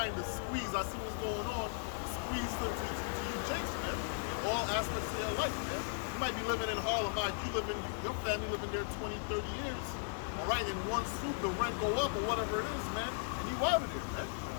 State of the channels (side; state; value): right; silent; digital silence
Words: the squeeze. I see what's going on. Squeeze to you Jakes, man. In all aspects of your life, man. You might be living in Harlem, your family living there 20, 30 years. All right, in one swoop, the rent go up or whatever it is, man. And you out of there, man.